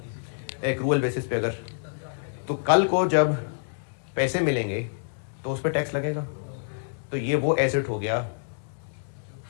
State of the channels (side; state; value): right; silent; digital silence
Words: एक्रूअल बेसिस पे अगर तो कल को जब पैसे मिलेंगे तो उस पर टैक्स लगेगा। तो ये वो एसेट हो गया